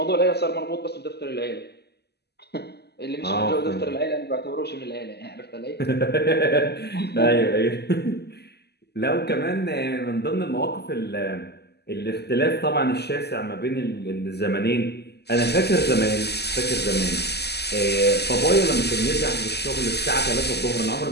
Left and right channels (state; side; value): late; right; 0.48 ms